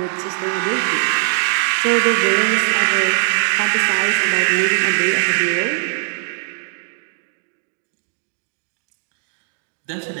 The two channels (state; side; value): silent; left; digital silence